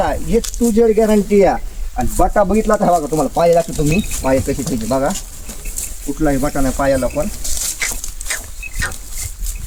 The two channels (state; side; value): identical; both; correlation 1.00